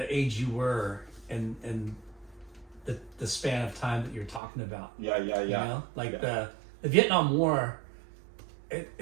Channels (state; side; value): drops out; left; at 4.4 s